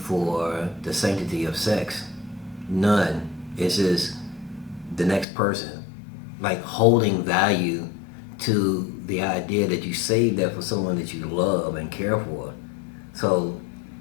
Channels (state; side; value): drops out; right; at 5.2 s